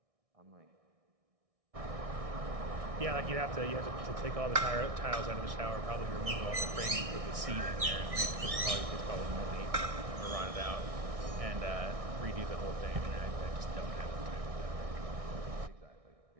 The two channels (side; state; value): left; late; 1.6 ms